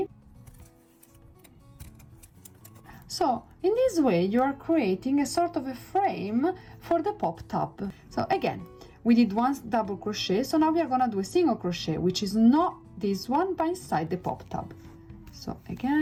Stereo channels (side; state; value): both; identical; correlation 1.00